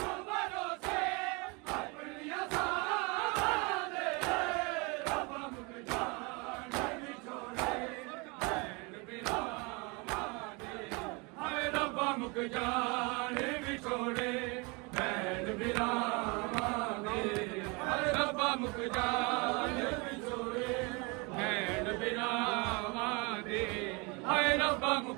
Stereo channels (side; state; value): left; quieter; 29.0 dB